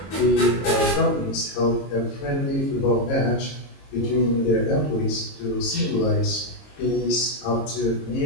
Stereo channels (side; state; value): right; late; 22 ms